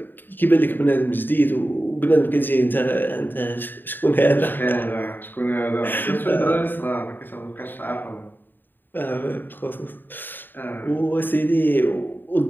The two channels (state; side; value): late; right; 0.092 ms